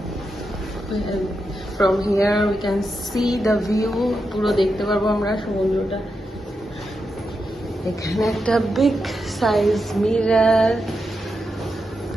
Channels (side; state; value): both; normal; correlation 0.87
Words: And from here we can see the view. পুরো দেখতে পারবো আমরা সমুদ্রটা। এখানে একটা big size mirror.